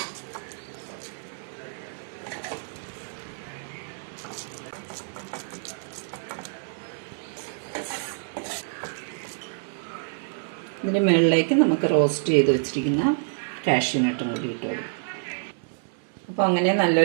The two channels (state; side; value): silent; left; digital silence